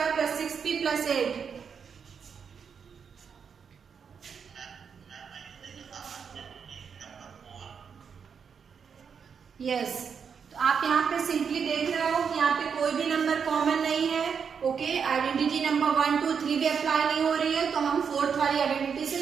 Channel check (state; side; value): quieter; left; 6.6 dB